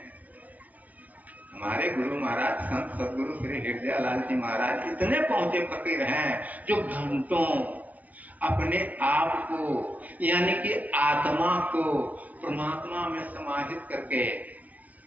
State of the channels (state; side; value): late; left; 0.073 ms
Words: हमारे गुरु महाराज संत सदगुरु श्री हृदयालाल जी महाराज इतने पहुंचे फकीर हैं जो घंटों अपने आप को यानी कि आत्मा को परमात्मा में समाहित करके